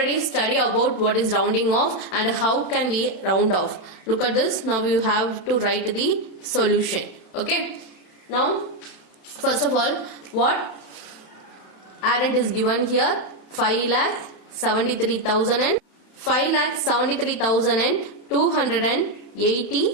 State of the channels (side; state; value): right; late; 31 ms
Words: study about what is rounding off and how can we round off. Look at this. Now you have to write the solution. Okay, now first of all, what addend is given here,